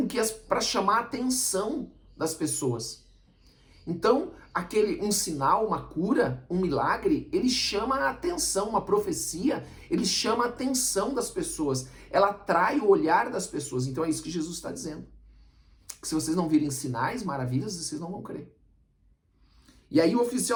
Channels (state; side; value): identical; both; correlation 1.00